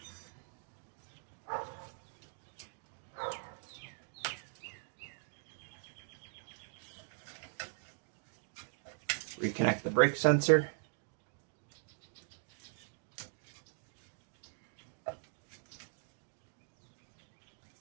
Reconnect the brake sensor.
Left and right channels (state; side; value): silent; left; digital silence